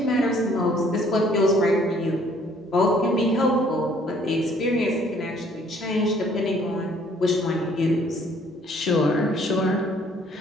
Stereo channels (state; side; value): normal; both; correlation 0.61